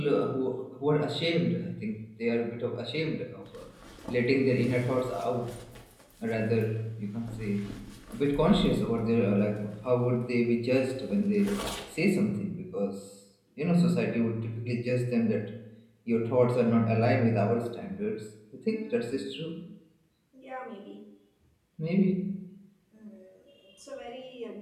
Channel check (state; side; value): identical; both; correlation 1.00